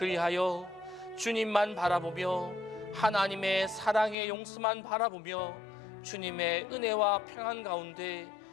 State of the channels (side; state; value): right; drops out; at 4.2 s